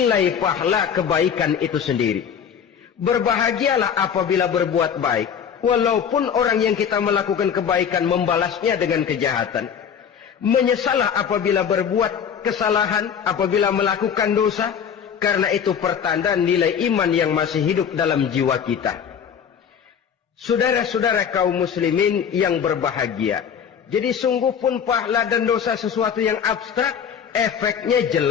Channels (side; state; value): right; quieter; 7.7 dB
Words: pahala kebaikan itu sendiri. Berbahagialah apabila berbuat baik, walaupun orang yang kita melakukan kebaikan membalasnya dengan kejahatan. Menyesalah apabila berbuat kesalahan, apabila melakukan dosa, karena itu pertanda nilai iman yang masih hidup dalam jiwa kita. Saudara-saudara kaum muslimin yang berbahagia, jadi sungguh pun pahala dan dosa sesuatu yang abstrak, efeknya